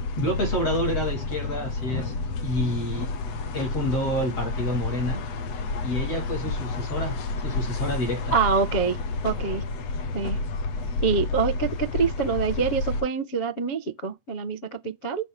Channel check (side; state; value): right; late; 8.1 ms